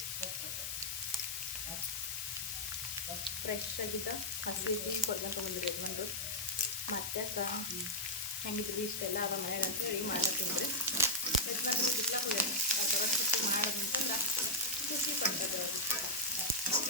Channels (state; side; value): noise; left; hiss, 3 dB below the sound